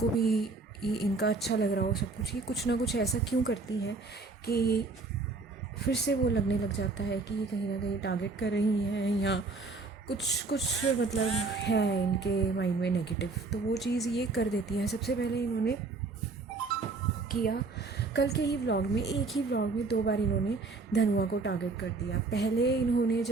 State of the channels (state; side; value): quieter; left; 3.8 dB